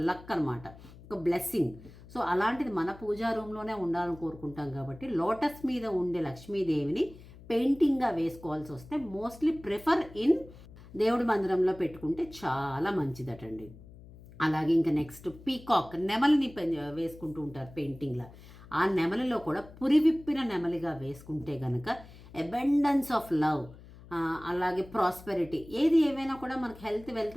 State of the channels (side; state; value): left; noise; hum, 19 dB below the sound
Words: లక్ అనమాట, ఒక బ్లెస్సింగ్. సో అలాంటిది మన పూజా రూమ్లోనే ఉండాలని కోరుకుంటాం. కాబట్టి లోటస్ మీద ఉండే లక్ష్మీదేవిని పెయింటింగ్గా వేసుకోవాల్సి వస్తే మోస్ట్లీ ప్రిఫర్ ఇన్ దేవుడి మందిరంలో పెట్టుకుంటే చాలా మంచిదటండి. అలాగే ఇంకా నెక్స్ట్ పీకాక్, నెమలిని వేసుకుంటూ ఉంటారు పెయింటింగ్లా. ఆ నెమలిలో కూడా పురివిప్పిన నెమలిగా వేసుకుంటే కనుక అబండెన్స్ ఆఫ్ లవ్, అలాగే ప్రాస్పెరిటీ, ఏవైనా కూడా మనకి హెల్త్,